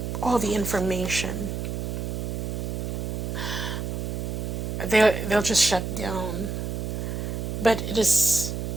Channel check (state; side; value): noise; right; hum, 3 dB below the sound